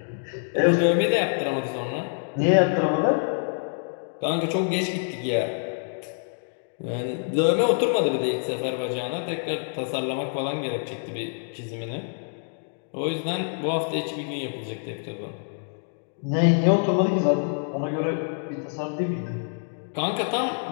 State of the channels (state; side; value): silent; right; digital silence